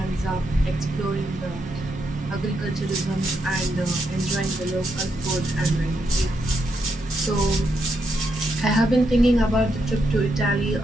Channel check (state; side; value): normal; both; correlation 0.81